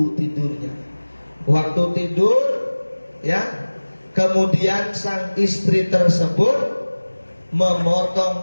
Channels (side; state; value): both; inverted; correlation -1.00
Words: tidurnya, waktu tidur, ya, kemudian sang istri tersebut